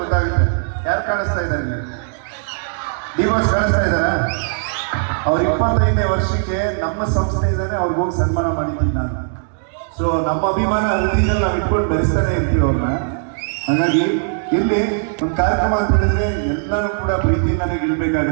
ಗೊತ್ತಾಗುತ್ತೆ ಯಾರು ಕಾಣಿಸ್ತಾ ಇದ್ದಾರೆ. ಡಿವೋರ್ಸ್ ಕಾಣಿಸ್ತಾ ಇದ್ದಾರಾ? ಅವ್ರ 25ನೇ ವರ್ಷಕ್ಕೆ ನಮ್ಮ ಸಂಸ್ಥೆಯಿಂದಾನೆ ಅವ್ರಿಗೆ ಹೋಗಿ ಸನ್ಮಾನ ಮಾಡಿದ್ದೀನಿ ನಾನು. ಸೊ ನಮ್ಮ ಅಭಿಮಾನ ಹೃದಯದಲ್ಲಿ ನಾವು ಇಟ್ಕೊಂಡು ಬೆರೆಸ್ತಾನೆ ಇರ್ತೀವಿ ಅವ್ರನ್ನ. ಹಾಗಾಗಿ ಇಲ್ಲಿ ಒಂದು ಕಾರ್ಯಕ್ರಮ ಅಂತ ಹೇಳಿದ್ರೆ ಎಲ್ಲರೂ ಕೂಡ ಪ್ರೀತಿಯಿಂದಾನೇ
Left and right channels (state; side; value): silent; left; digital silence